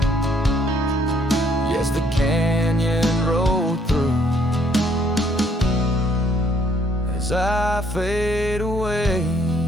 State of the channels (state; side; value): normal; both; correlation 0.66